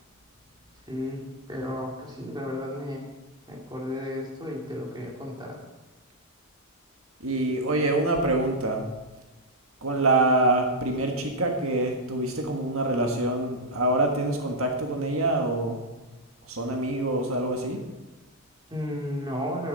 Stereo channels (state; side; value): normal; both; correlation -0.04